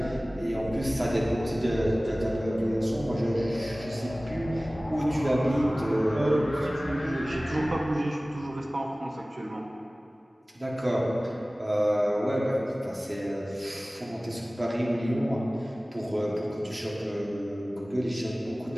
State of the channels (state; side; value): normal; both; correlation 0.98